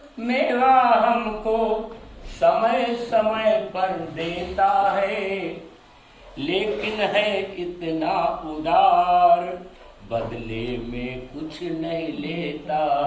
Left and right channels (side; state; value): both; identical; correlation 1.00